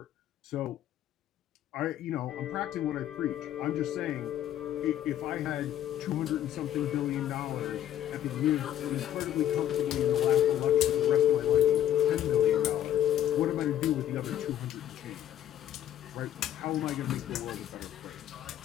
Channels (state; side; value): quieter; right; 11.4 dB